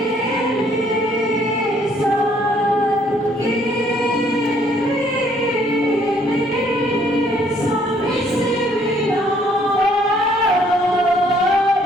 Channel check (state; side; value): normal; both; correlation 0.64